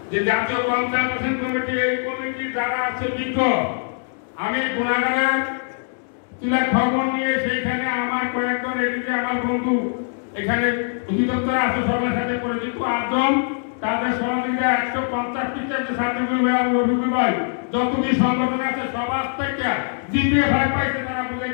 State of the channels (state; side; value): silent; right; digital silence